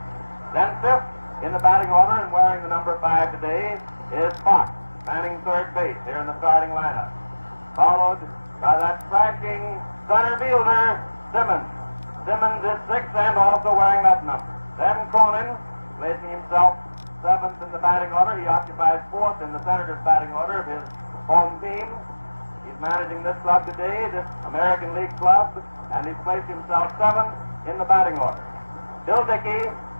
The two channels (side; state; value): both; inverted; correlation -1.00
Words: Then fifth in the batting order and wearing the number 5 today is Fox, manning third base here in the starting lineup. Followed by that striking center fielder, Simmons. Simmons is sixth and also wearing that number. Then Cronin, placing himself 7th in the batting order. He occupies 4th in the Senators' batting order of his home team. He's managing this club today, this American League club, and he's placed himself 7th in the batting order. Bill Dickey,